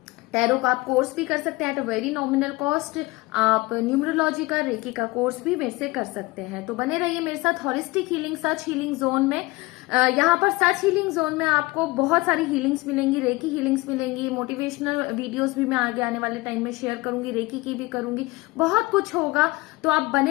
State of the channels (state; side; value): quieter; right; 21.9 dB